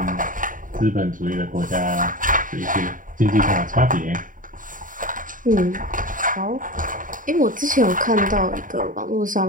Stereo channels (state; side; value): late; left; 0.39 ms